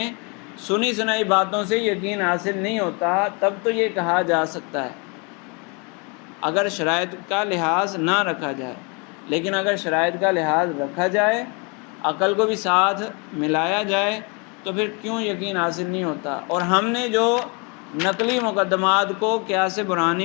سنی سنائی باتوں سے یقین حاصل نہیں ہوتا، تب تو یہ کہا جا سکتا ہے اگر شرائط کا لحاظ نہ رکھا جائے۔ لیکن اگر شرائط کا لحاظ رکھا جائے، عقل کو بھی ساتھ ملایا جائے، تو پھر کیوں یقین حاصل نہیں ہوتا؟ اور ہم نے جو نقلی مقدمات کو قیاس برہانی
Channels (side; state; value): right; quieter; 32.4 dB